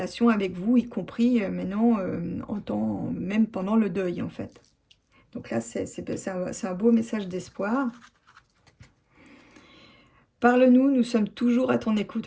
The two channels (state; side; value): identical; both; correlation 1.00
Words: avec vous, y compris maintenant, même pendant le deuil en fait. Donc là, c'est un beau message d'espoir. Parle-nous, nous sommes toujours à ton écoute.